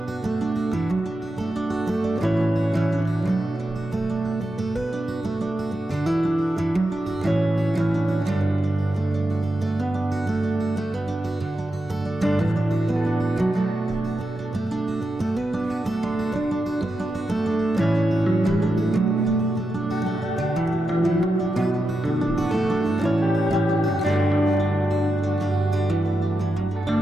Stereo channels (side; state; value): both; normal; correlation 0.88